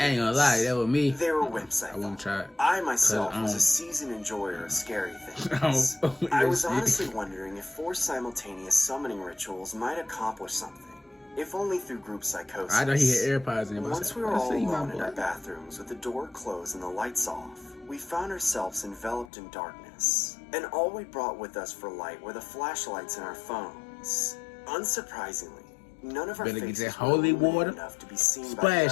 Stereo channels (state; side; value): drops out; right; at 19.3 s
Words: I ain't gonna lie, that was me. They were wimps, I won't try it. I myself was a seasoned enjoyer of scary things. I was honestly wondering if 4 simultaneous summoning rituals might accomplish something. If only through group psychosis. I know he had AirPods in. Once we were all alone in our bathrooms with the door closed and the lights off, we found ourselves enveloped in darkness. And all we brought with us for light were the flashlights in our phones. Unsurprisingly, none of our faces were illuminated enough to be seen by